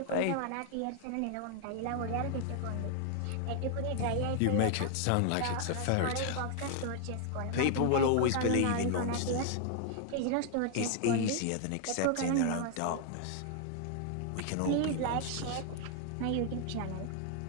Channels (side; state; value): both; different; correlation 0.00